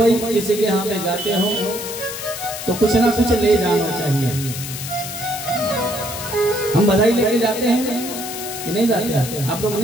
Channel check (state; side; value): noise; left; hiss, 8 dB below the sound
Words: किसी के यहाँ पे जाते हो तो कुछ ना कुछ ले जाना चाहिए। हम बधाई लेके जाते हैं कि नहीं जाते? आप लोग